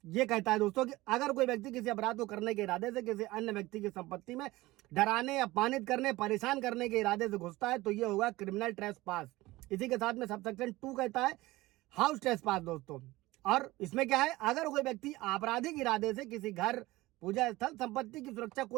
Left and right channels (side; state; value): left; quieter; 19.1 dB